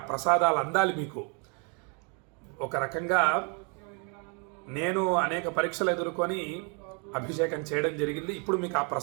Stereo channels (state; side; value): quieter; left; 36.1 dB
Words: ప్రసాదాలు అందాలి మీకు. ఒక రకంగా నేను అనేక పరీక్షలు ఎదుర్కొని అభిషేకం చేయడం జరిగింది. ఇప్పుడు మీకు ఆ